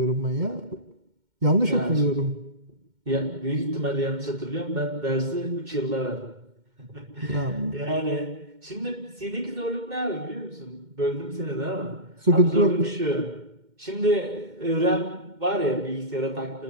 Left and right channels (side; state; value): left; late; 2.1 ms